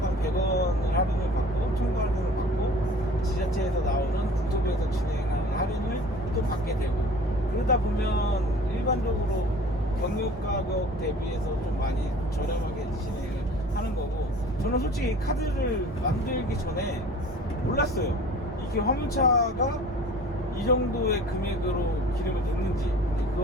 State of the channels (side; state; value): both; normal; correlation 0.45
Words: 100원을 할인을 받고 첨부 할인을 받고 지자체에서 나오는 국토부에서 진행하는 할인을 또 받게 되고 그러다 보면 일반적으로 경유 가격 대비해서 좀 많이 저렴하게 진행을 하는 거고 저는 솔직히 카드를 만들기 전에 몰랐어요. 이게 화물차가 이 정도의 금액으로 기름을 넣는지